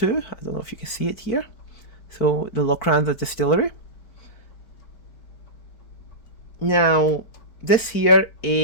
I don't know if you can see it here. So, the Lochranza distillery. Now, this here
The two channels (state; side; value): late; right; 4.5 ms